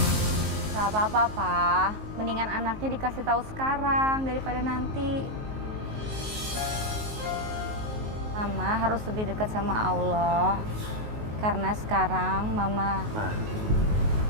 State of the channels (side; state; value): left; late; 19 ms